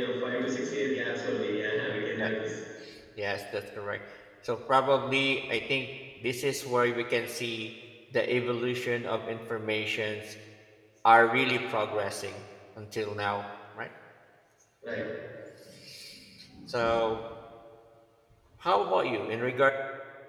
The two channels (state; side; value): identical; both; correlation 1.00